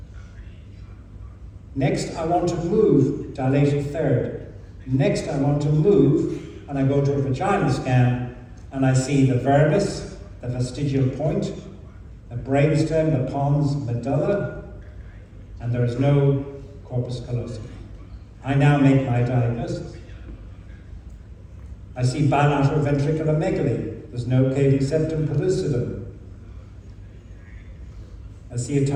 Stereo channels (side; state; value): both; identical; correlation 1.00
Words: Next, I want to move, dilated third. Next, I want to move, and I go to a vaginal scan, and I see the vermis, the vestigial point, the brainstem, the pons medulla, and there is no corpus callosum. I now make my diagnosis. I see bilateral ventriculomegaly. There's no cavum septum pellucidum. I see a